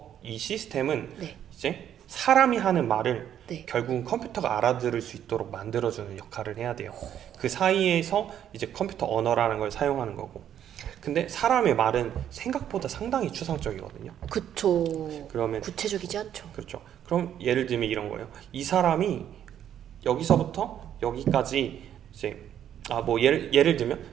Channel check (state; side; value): quieter; left; 10.1 dB